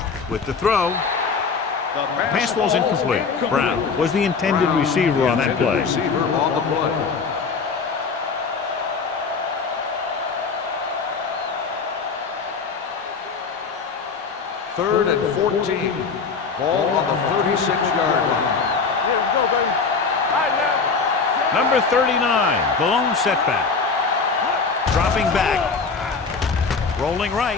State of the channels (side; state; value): right; quieter; 5.0 dB